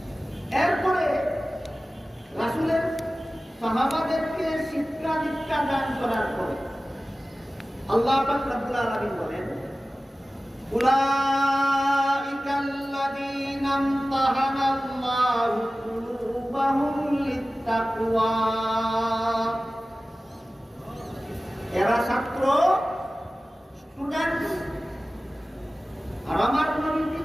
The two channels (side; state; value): both; normal; correlation 0.96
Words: এরপরে রাসূলের সাহাবাদেরকে শিক্ষা দীক্ষা দান করার পরে আল্লাহ পাক রব্বুল আলামিন বলেন, উলাইকাল্লাযীনা ইমতাহানাল্লাহু কুলুবাহুম লিত্তাকওয়া, এরা ছাত্র স্টুডেন্ট আর আমার নবী